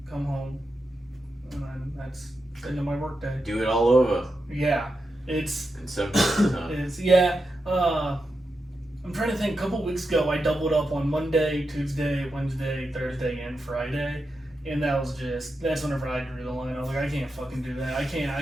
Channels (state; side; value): normal; both; correlation 0.88